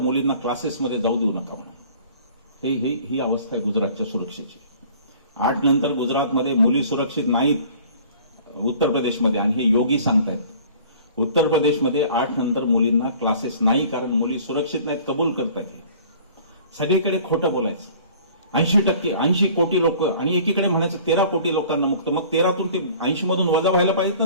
क्लासेसमध्ये जाऊ देऊ नका म्हणून. ही अवस्था आहे गुजरातच्या सुरक्षेची. 8 नंतर गुजरातमध्ये मुली सुरक्षित नाहीत उत्तर प्रदेशमध्ये, आणि हे योगी सांगतायत. उत्तर प्रदेशमध्ये 8 नंतर मुलींना क्लासेस नाही, कारण मुली सुरक्षित नाहीत, कबूल करतायत. सगळीकडे खोटं बोलायचं. 80 कोटी लोक, आणि एकीकडे म्हणायचं 13 कोटी लोकांना मुक्त. मग 13तून ते 80 मधून वजा व्हायला पाहिजेत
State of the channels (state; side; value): inverted; both; correlation -0.50